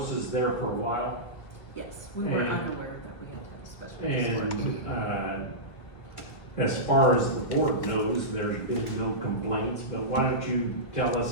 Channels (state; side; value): late; right; 1.6 ms